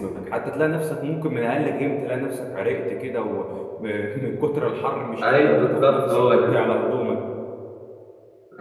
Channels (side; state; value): both; identical; correlation 1.00